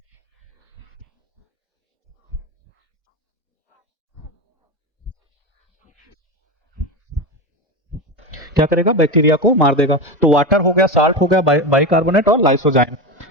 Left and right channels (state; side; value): normal; both; correlation 0.19